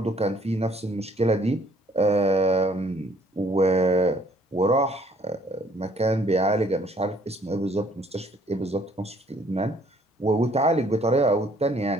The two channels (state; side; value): normal; both; correlation 0.61